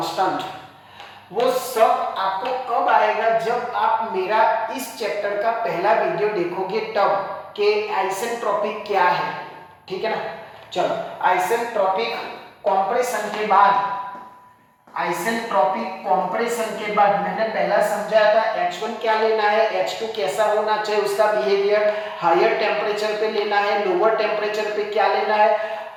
वो सब आपको कब आएगा? जब आप मेरा इस चैप्टर का पहला वीडियो देखोगे तब, कि आइसेंट्रोपिक क्या है। ठीक है ना। चलो, आइसेंट्रोपिक कंप्रेशन के बाद, आइसेंट्रोपिक कंप्रेशन के बाद मैंने पहला समझाया था H1 क्या लेना है, H2 कैसा होना चाहिए उसका बिहेवियर, हायर टेम्परेचर पे लेना है, लोअर टेम्परेचर पे क्या लेना है।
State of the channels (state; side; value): identical; both; correlation 1.00